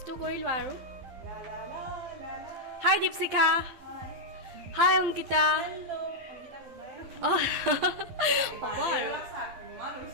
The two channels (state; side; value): late; left; 12 ms